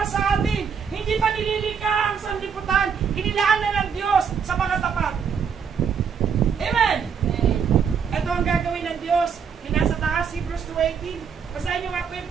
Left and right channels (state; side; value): quieter; left; 6.7 dB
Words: sa atin. Hindi pa nililika ang sanlibutan. Inilaan na ng Diyos sa mga tapat. Amen. Ito ang gagawin ng Diyos. Yung nasa taas, Hebrews 2:18. Basahin nyo nga po yun,